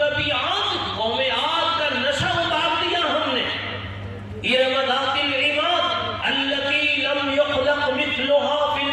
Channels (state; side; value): identical; both; correlation 1.00